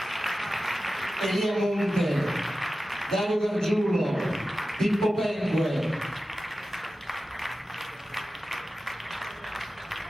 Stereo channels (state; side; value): normal; both; correlation 0.94